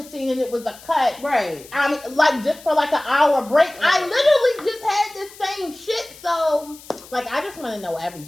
scene and it was a cut. Right. I mean, like, just for like an hour break. Right. I literally just had this same shit. So, like, I just want to know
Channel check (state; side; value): noise; left; hiss, 20 dB below the sound